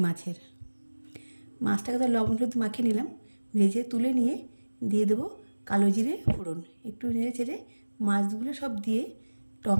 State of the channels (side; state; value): both; inverted; correlation -1.00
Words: মাছের। মাছটাকে তো লবণ হলুদ মাখিয়ে নিলাম, ভেজে তুলে নিয়ে দিয়ে দেবো কালো জিরে ফোড়ন। একটু নেড়ে চেড়ে মাছগুলো সব দিয়ে